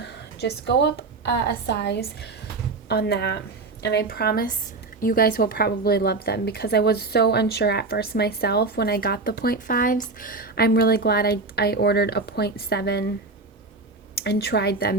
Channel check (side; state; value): left; quieter; 3.7 dB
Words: just go up a size on that, and I promise you guys will probably love them, because I was so unsure at first myself when I got the 0.5s. I'm really glad I ordered a 0.7 and tried